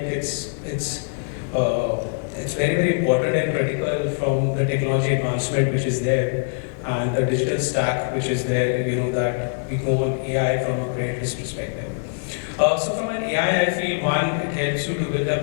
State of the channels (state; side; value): silent; right; digital silence